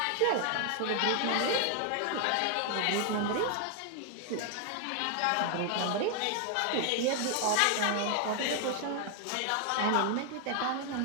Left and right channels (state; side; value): different; both; correlation 0.00